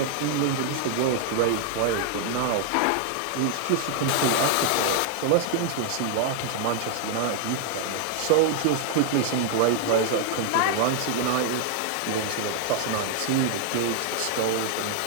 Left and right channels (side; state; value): both; different; correlation 0.00